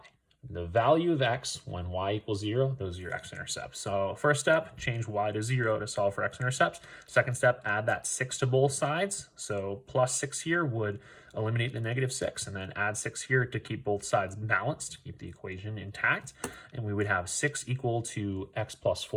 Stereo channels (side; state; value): both; identical; correlation 1.00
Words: The value of x when y equals 0, those are your x-intercepts. So first step, change y to 0 to solve for x-intercepts. Second step, add that 6 to both sides. So plus 6 here would eliminate the negative 6, and then add 6 here to keep both sides balanced, keep the equation intact. And we would have 6 equal to x plus